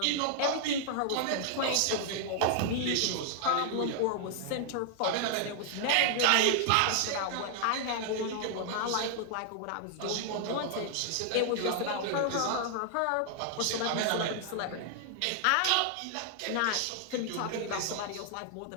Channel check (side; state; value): both; different; correlation 0.00